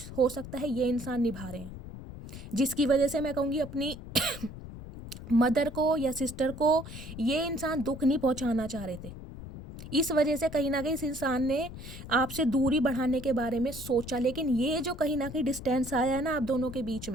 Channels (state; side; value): noise; left; rumble, 12 dB below the sound